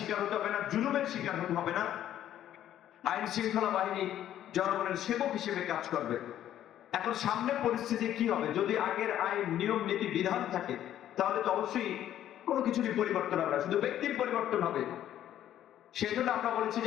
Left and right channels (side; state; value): right; quieter; 11.6 dB